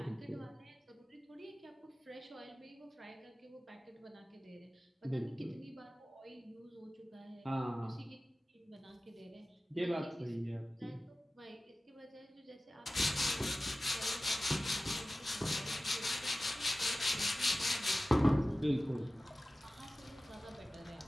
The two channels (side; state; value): both; normal; correlation 0.96